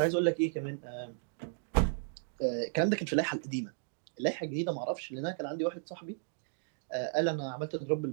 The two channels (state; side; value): silent; left; digital silence